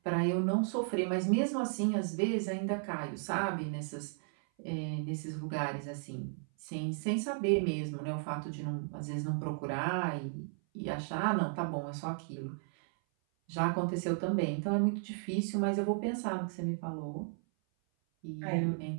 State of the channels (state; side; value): silent; left; 55 dB below the other